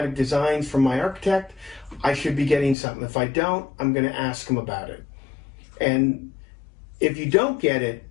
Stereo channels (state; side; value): drops out; right; at 2.8 s